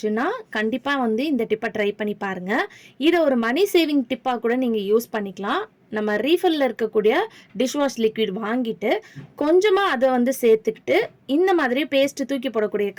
கண்டிப்பாக வந்து இந்த டிப்பை ட்ரை பண்ணி பாருங்கள். இதை ஒரு மணி சேவிங் டிப்பாக கூட நீங்கள் யூஸ் பண்ணிக்கலாம். நம்ம ரீஃபில்லில் இருக்கக்கூடிய டிஷ்வாஷ் லிக்விட் வாங்கிட்டு கொஞ்சமாக அதை வந்து சேர்த்துக்கிட்டு இந்த மாதிரி பேஸ்ட்டு தூக்கி போடக்கூடிய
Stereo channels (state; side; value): identical; both; correlation 1.00